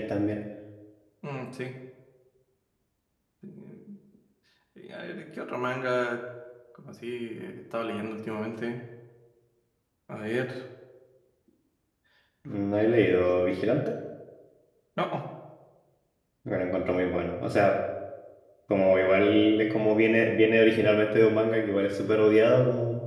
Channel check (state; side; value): identical; both; correlation 1.00